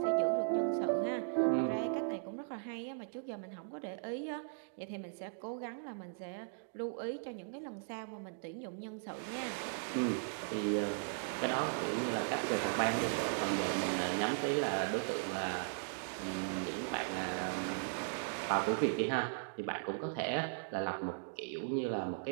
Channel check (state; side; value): silent; left; digital silence